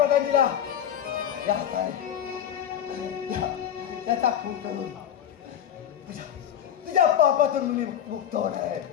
त्याचा खून करून तुझ्या पापातून मी मुक्त होणार आहे.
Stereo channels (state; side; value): quieter; right; 9.8 dB